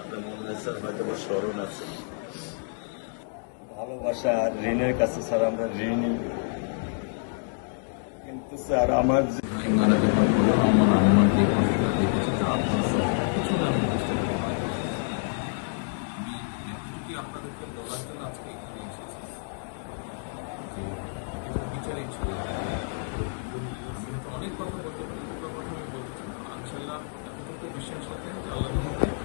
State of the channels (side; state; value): right; silent; digital silence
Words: আপনার মনে হয় স্যার হয়তো স্মরণ আছে। ভালোবাসা আর ঋণের কাছে স্যার আমরা ঋণী, কিন্তু স্যার আমার মারা যাওয়ার পরে আমার আম্মার যে কষ্টটা দেখেছি তা আপনার স্যার কিছুটা আমি বুঝতে পারি। আমি আপনাদেরকে বলার জন্য আজকে এখানে এসেছি যে এটা বিচারিক ছিল, অনেক কথা বলতে পারি, দুটো কথা আমি বলতে চাই। ইনশাল্লাহ এতটুকু বিশ্বাস রাখেন যে আল্লাহ